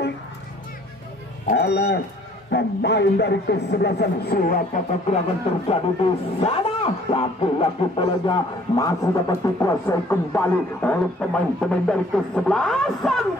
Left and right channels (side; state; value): both; normal; correlation 0.57